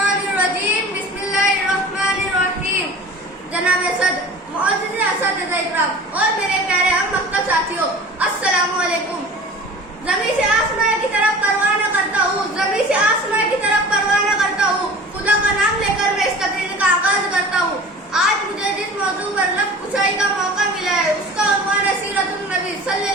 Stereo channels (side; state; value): both; normal; correlation 0.41